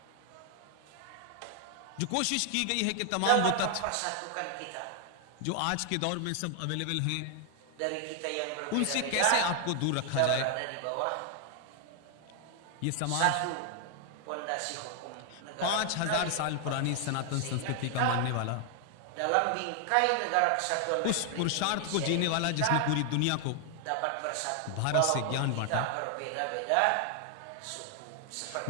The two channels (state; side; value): different; both; correlation 0.00